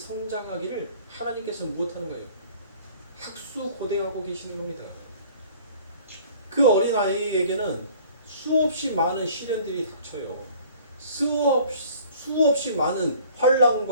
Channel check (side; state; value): both; inverted; correlation -0.51